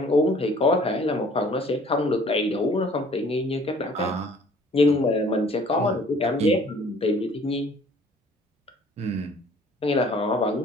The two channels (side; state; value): both; normal; correlation 0.54